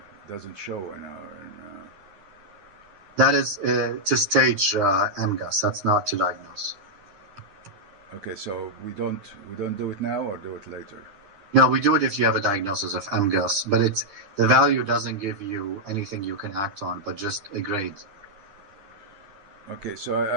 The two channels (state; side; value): late; left; 10 ms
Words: Doesn't show in our... That is to stage MGUS. That's not to diagnose. Okay, so we don't do it now or do it later? No, we do it if you have a diagnosis of MGUS, but the value doesn't give you anything you can act on, but just a grade. Okay, so